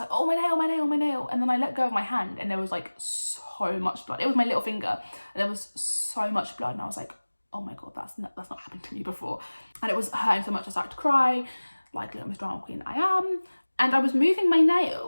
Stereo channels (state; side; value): inverted; both; correlation -1.00